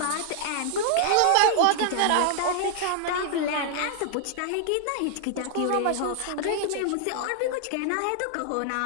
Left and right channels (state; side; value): different; both; correlation 0.00